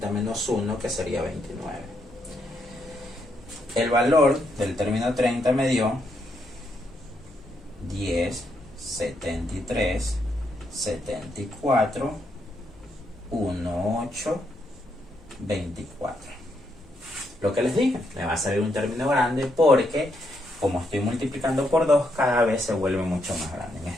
menos 1, que sería 29. El valor del término 30 me dio 10, 73, 74, 1, 8, 24. Lo que les dije, me va a salir un término grande porque como estoy multiplicando por 2, cada vez se vuelve mucho más grande. En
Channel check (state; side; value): normal; both; correlation 0.77